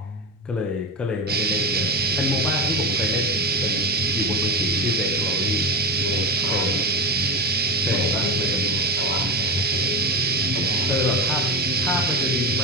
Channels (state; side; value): normal; both; correlation 0.21